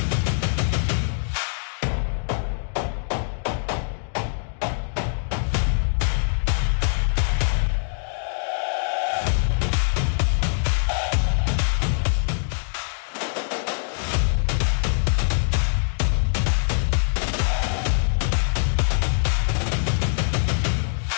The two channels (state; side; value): silent; right; digital silence